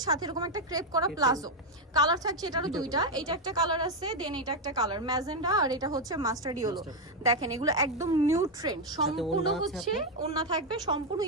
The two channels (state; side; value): normal; both; correlation 0.04